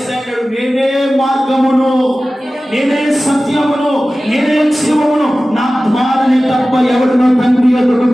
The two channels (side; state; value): both; normal; correlation 0.96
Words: నేనే మార్గమును, నేనే సత్యమును, నేనే జీవమును, నా ద్వారానే తప్ప ఎవరినో తండ్రి ఎదుగు